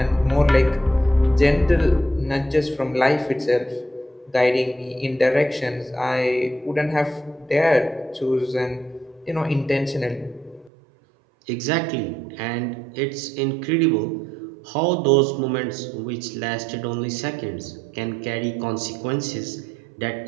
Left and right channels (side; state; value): left; drops out; at 10.7 s